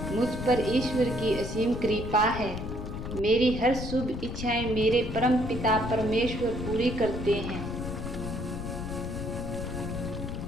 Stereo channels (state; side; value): noise; left; rumble, 6 dB below the sound